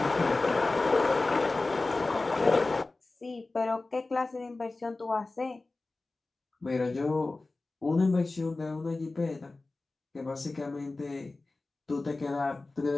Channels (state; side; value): quieter; right; 3.3 dB